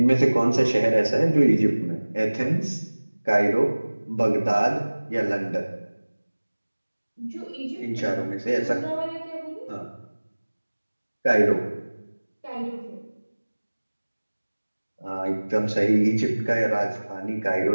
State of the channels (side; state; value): both; inverted; correlation -1.00